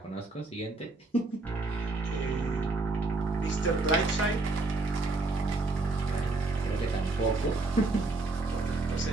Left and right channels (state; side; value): quieter; left; 3.4 dB